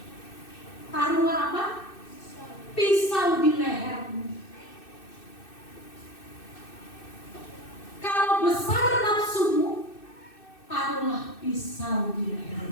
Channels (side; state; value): right; late; 2.6 ms